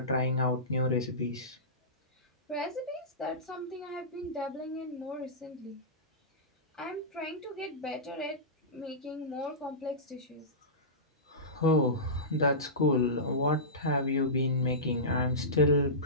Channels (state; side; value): normal; both; correlation -0.19